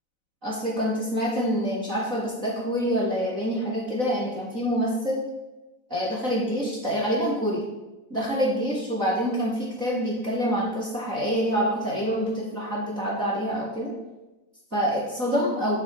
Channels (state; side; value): late; left; 4.0 ms